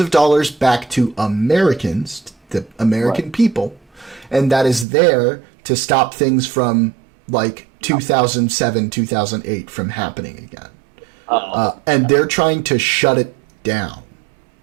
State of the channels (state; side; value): drops out; left; at 4.9 s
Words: of dollars back to Americans, the American people, and that is there to stop things from like 2007, 2008 from happening again. And they're trying to shut it down.